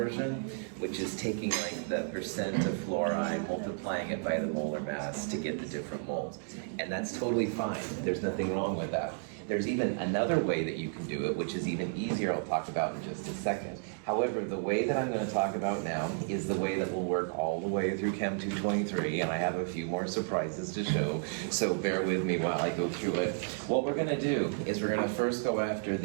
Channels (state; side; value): silent; left; digital silence